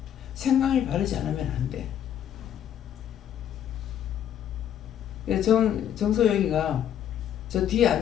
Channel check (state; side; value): quieter; right; 10.0 dB